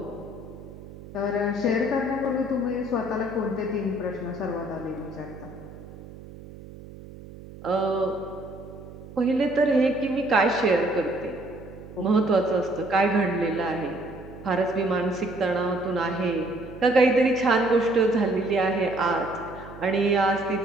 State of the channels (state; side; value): noise; right; hum, 16 dB below the sound